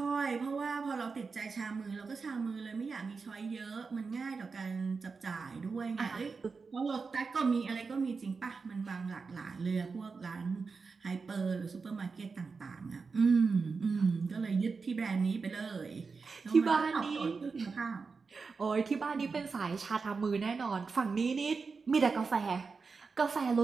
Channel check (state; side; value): quieter; left; 4.8 dB